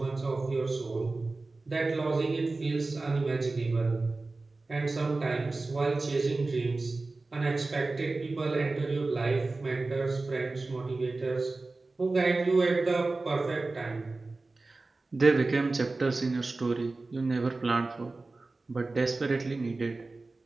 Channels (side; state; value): left; quieter; 3.4 dB